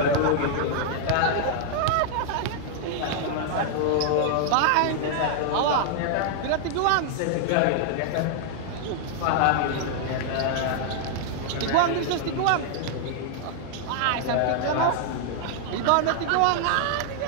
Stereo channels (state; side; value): different; both; correlation -0.01